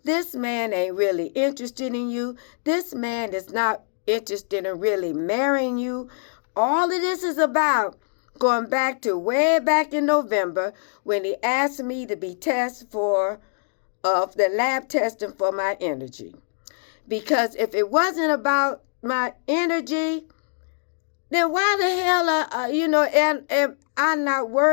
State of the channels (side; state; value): right; silent; digital silence